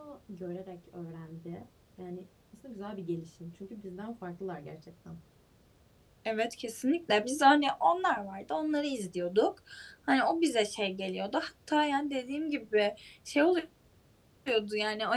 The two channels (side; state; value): both; identical; correlation 1.00